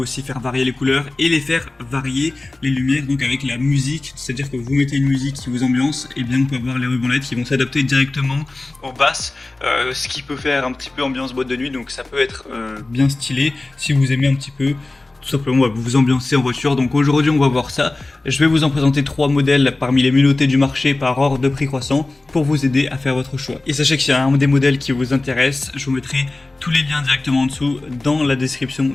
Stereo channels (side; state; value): right; quieter; 3.0 dB